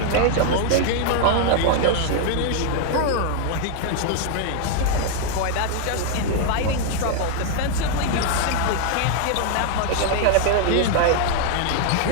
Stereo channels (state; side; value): different; both; correlation 0.00